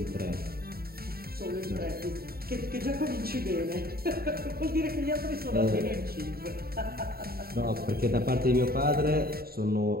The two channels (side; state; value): left; late; 0.44 ms